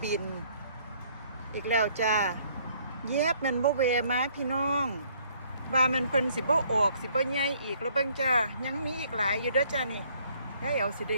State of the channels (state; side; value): inverted; both; correlation -0.63